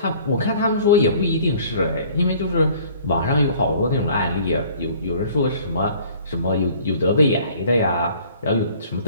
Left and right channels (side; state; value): both; inverted; correlation -0.53